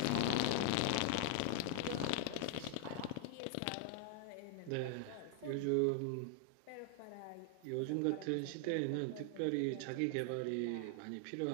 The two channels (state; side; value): different; both; correlation 0.00